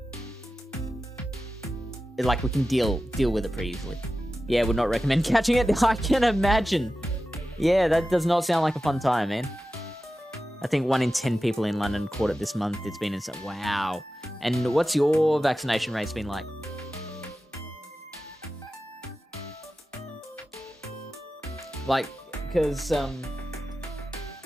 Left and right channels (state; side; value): normal; both; correlation 0.93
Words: like we can deal with it pretty easily. Yeah, would not recommend catching it. I can imagine. Yeah, that does not sound like a fun time, man. I think 1 in 10 people in London caught it this month. It's been insane. Wow. And what's your vaccination rates been like? Like, because,